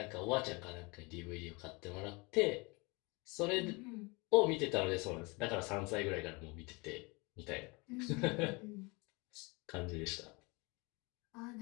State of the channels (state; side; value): quieter; right; 27.6 dB